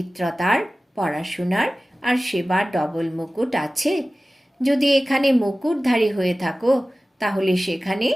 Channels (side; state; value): both; normal; correlation 0.97